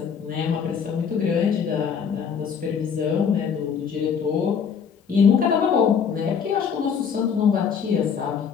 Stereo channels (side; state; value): right; quieter; 6.8 dB